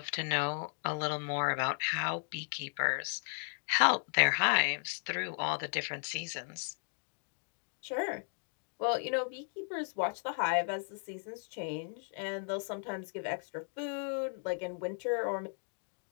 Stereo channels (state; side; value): silent; right; 54 dB below the other